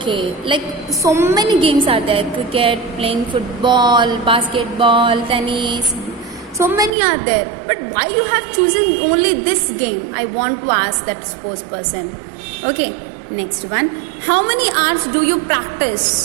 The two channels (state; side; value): drops out; left; at 6.9 s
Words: Like so many games are there. Cricket, playing football, basketball, tennis. So many are there. But why you have chosen only this game? I want to ask that sports person. Okay. Next one. How many hours do you